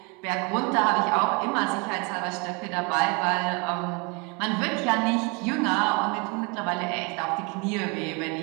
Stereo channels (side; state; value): left; quieter; 30.4 dB